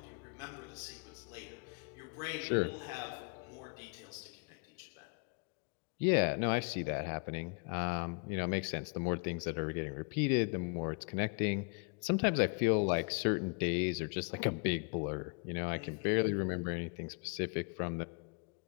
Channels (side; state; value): right; quieter; 35.5 dB